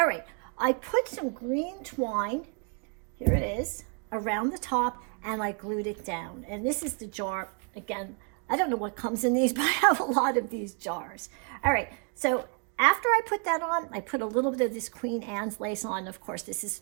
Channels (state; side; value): quieter; left; 37.1 dB